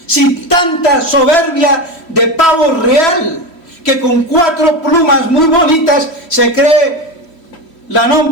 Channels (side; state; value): right; late; 3.0 ms